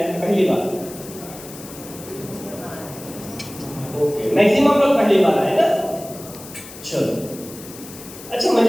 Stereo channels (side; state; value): left; noise; hiss, 16 dB below the sound